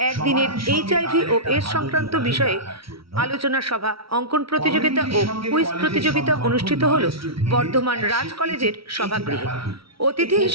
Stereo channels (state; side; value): late; left; 0.75 ms